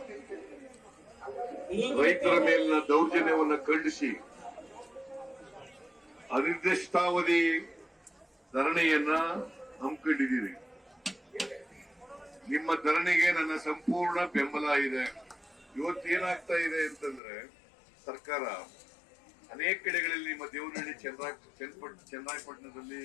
ರೈತರ ಮೇಲಿನ ದೌರ್ಜನ್ಯವನ್ನ ಖಂಡಿಸಿ ಅನಿರ್ದಿಷ್ಟಾವಧಿ ಧರಣಿಯನ್ನ ಹಮ್ಮಿಕೊಂಡಿದ್ದೀರಿ. ನಿಮ್ಮ ಧರಣಿಗೆ ನನ್ನ ಸಂಪೂರ್ಣ ಬೆಂಬಲ ಇದೆ. ಇವತ್ತೇನಾಗ್ತಾ ಇದೆ ಅಂತಂದ್ರೆ ಸರ್ಕಾರ ಅನೇಕ ಕಡೆಗಳಲ್ಲಿ ನಿಮ್ಮ ದೇವನಹಳ್ಳಿ ಚನ್ನರಾಯಪಟ್ಟಣದಲ್ಲಿ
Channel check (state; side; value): drops out; right; at 17.2 s